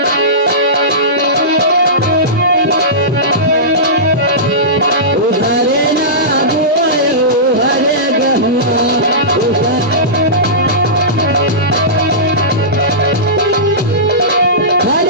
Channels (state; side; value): normal; both; correlation -0.19